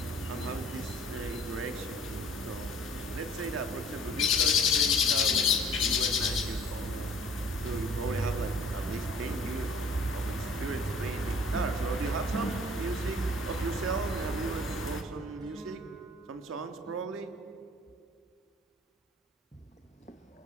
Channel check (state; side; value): normal; both; correlation 0.51